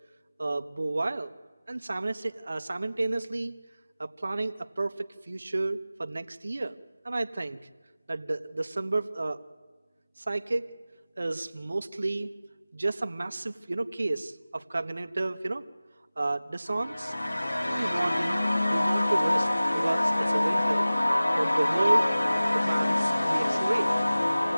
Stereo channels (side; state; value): both; inverted; correlation -0.97